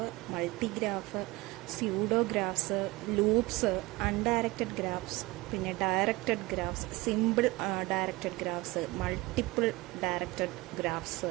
multigraph, pseudographs, loops, undirected graphs, പിന്നെ directed graphs, simple directed graphs, multiple directed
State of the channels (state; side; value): quieter; left; 21.8 dB